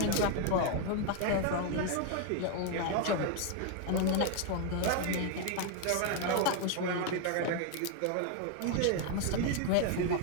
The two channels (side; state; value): both; different; correlation 0.01